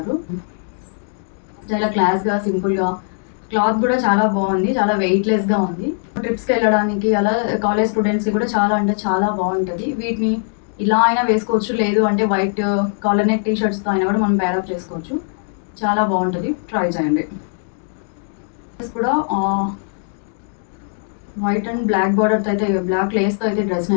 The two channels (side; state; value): right; silent; 66 dB below the other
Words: చాలా క్లాస్గా సింపుల్గా, క్లాత్ కూడా చాలా బాగుంది, చాలా వెయిట్లెస్గా ఉంది. ట్రిప్స్కి వెళ్ళడానికి అలా కాలేజ్ స్టూడెంట్స్కి కూడా చాలా అంటే చాలా బాగుంటుంది. వీటిని ఇలా అయినా వేసుకోవచ్చు, లేదు అంటే వైట్ కాలర్ నెక్ టీ షర్ట్స్తో అయినా కూడా మనం పేరప్ చేసుకోవచ్చు. చాలా బాగుంటుంది, ట్రై చేయండి. కూడా వైట్ అండ్ బ్లాక్ బార్డర్తో అయితే బ్లాక్ లేస్తో అయితే డ్రెస్ని